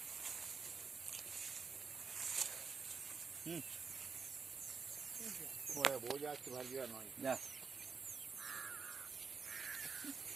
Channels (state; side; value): quieter; left; 5.4 dB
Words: बहुत जास्त भर दिया ना।